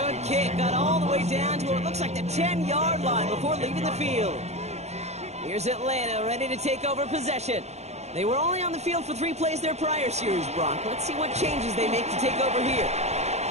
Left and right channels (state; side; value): late; left; 0.32 ms